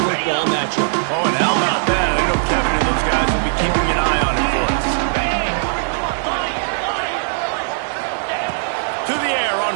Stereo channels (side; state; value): left; silent; digital silence